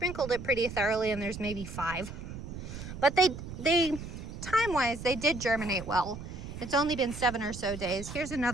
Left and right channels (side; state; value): right; noise; rumble, 10 dB below the sound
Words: it pretty thoroughly and there's maybe 5. But they time-wise, they did germinate well. It's only been 7 or so days. Here's